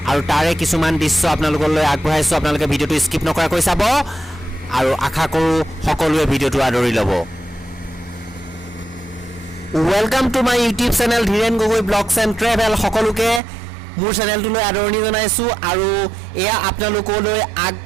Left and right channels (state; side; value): drops out; left; at 13.4 s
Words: আৰু তাৰে কিছুমান দৃশ্য आपनालोकলৈ আগবঢ়াইছো आपनालोকে ভিডিওটো স্কিপ নকৰাকৈ চাব আৰু আশা কৰো সকলোৱে ভিডিওটো আদৰি ল'ব welcome to my YouTube channel Dhiren Gogoi blogs and travel সকলোকে মোৰ চেনেলটোলৈ আদৰণি জনাইছো আৰু এয়া आपनालोकলৈ